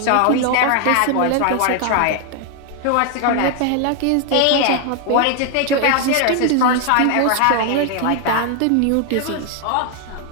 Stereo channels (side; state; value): both; different; correlation 0.01